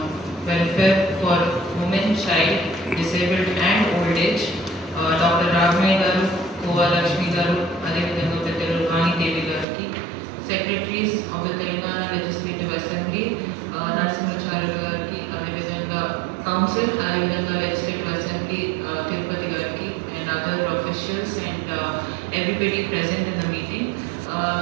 Welfare for Women, Child, Disabled and Old Age, Dr. Ragmay Garu, Kova Lakshmi Garu, Ade Vidanga Pettalu Vani Devi Gariki, Secretaries of the Telangana Legislative Assembly, Narasimhacharya Gariki, Ade Vidanga Council, Ade Vidanga Legislative Assembly, Tirupati Gariki, and other officials and everybody present in the meeting.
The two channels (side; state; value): left; drops out; at 9.7 s